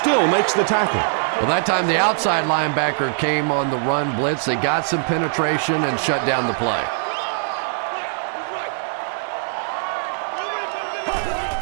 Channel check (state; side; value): silent; left; digital silence